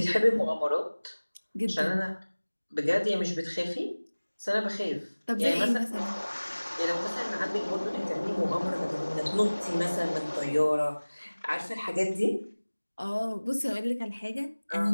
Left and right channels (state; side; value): inverted; both; correlation -1.00